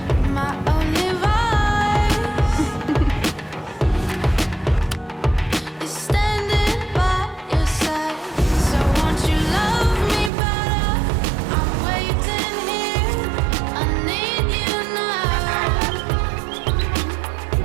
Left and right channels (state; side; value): drops out; left; at 10.3 s